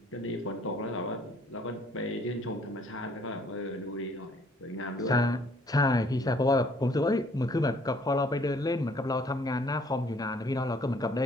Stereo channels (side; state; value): both; normal; correlation 0.60